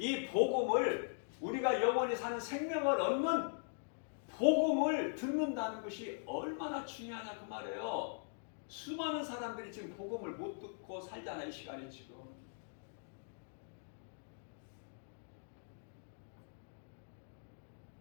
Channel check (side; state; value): right; silent; digital silence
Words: 복음을, 우리가 영원히 사는 생명을 얻는 복음을 듣는다는 것이 얼마나 중요하냐 그 말이에요. 수많은 사람들이 지금 복음을 못 듣고 살잖아. 이 시간에 지금.